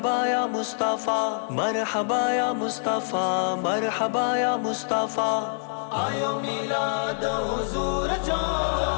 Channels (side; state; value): right; silent; digital silence